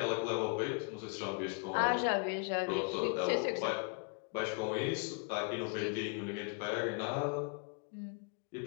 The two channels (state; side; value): quieter; right; 35.2 dB